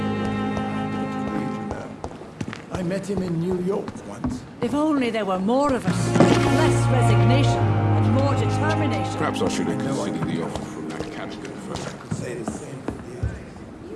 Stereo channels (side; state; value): both; identical; correlation 1.00